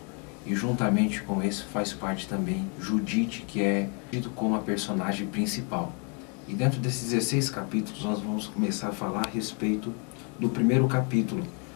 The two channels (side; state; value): right; quieter; 36.4 dB